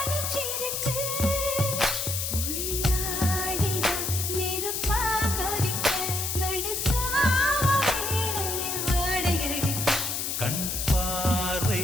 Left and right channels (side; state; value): left; noise; hiss, 2 dB below the sound